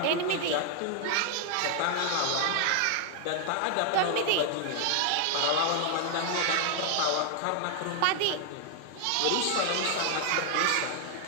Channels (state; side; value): different; both; correlation 0.00